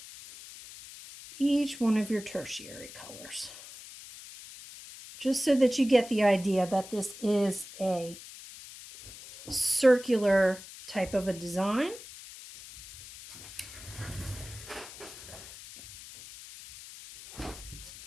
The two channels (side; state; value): left; noise; hiss, 15 dB below the sound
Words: each one of your tertiary colors. Just so that you get the idea that this is a circular type of a design.